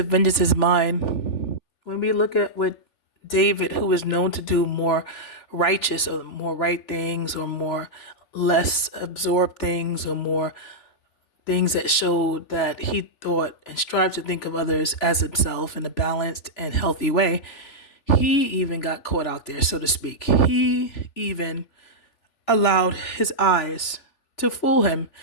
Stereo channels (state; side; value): late; right; 3.4 ms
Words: vengeance is mine, when we look at what David, who is known to do more righteous or more right things or more less absorbed things or more things that showed that he thought and strived to think of others as himself in a balanced and healthy way, he even got caught out there, so to speak. He even allowed his eyes to fool him